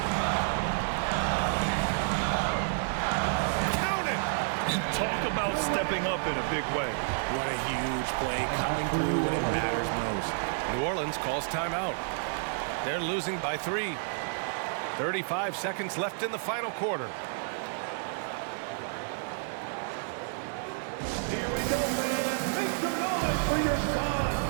Talk about stepping up in a big way. What a huge play coming through when it matters most. New Orleans calls timeout. They're losing by 3. 35 seconds left in the final quarter. Here we go, man. Make some noise for your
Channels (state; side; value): silent; left; digital silence